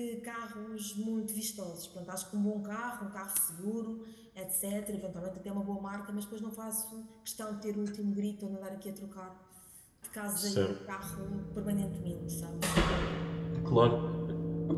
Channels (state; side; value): identical; both; correlation 1.00